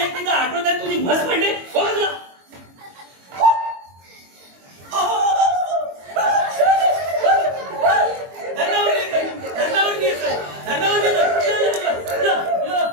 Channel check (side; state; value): left; late; 22 ms